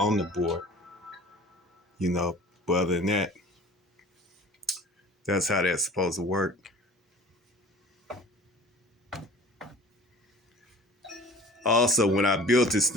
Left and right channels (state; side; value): normal; both; correlation 0.44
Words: the board, But other than that, that's how that's supposed to work. Also, when I built this